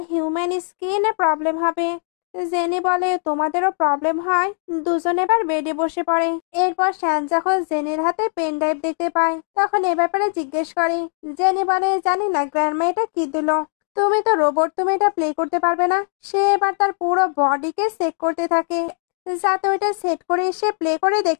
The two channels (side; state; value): right; silent; 62 dB below the other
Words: হিউম্যান স্কিনে প্রবলেম হবে। জেনি বলে তোমাদেরও প্রবলেম হয়। দুজন এবার বেডে বসে পড়ে। এরপর শ্যান যখন জেনির হাতে পেন ড্রাইভ দেখতে পায় তখন এ ব্যাপারে জিজ্ঞেস করে। জেনি বলে জানি না গ্র্যান্ডমা এটা কি দিল, তুমি তো রোবট, তুমি এটা প্লে করতে পারবে না। সে এবার তার পুরো বডিকে চেক করতে থাকে যাতে ওইটা সেট করে সে প্লে করে